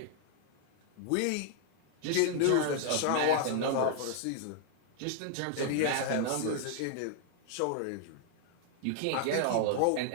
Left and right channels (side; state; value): both; different; correlation 0.00